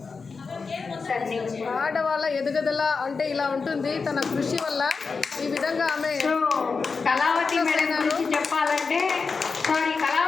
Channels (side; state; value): right; quieter; 4.8 dB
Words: ఆడవాళ్ళ ఎదుగుదల అంటే ఇలా ఉంటుంది. తన కృషి వల్ల ఈ విధంగా ఆమె கலாவதி மேடம் குறித்து చెప్పాలంటే